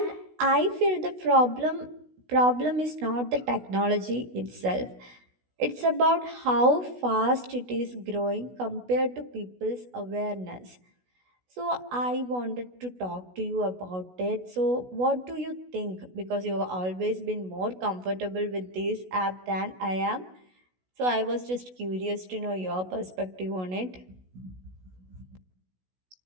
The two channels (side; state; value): left; late; 16 ms